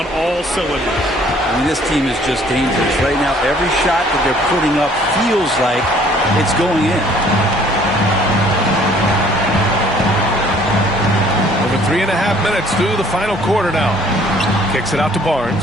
all cylinders. I mean, this team is just dangerous. Right now, every shot that they're putting up feels like it's going in. Over 3.5 minutes through the final quarter now. Kicks it out to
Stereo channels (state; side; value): normal; both; correlation 0.58